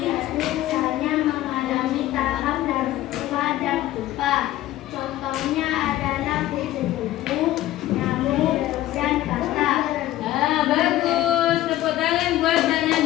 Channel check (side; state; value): right; quieter; 14.7 dB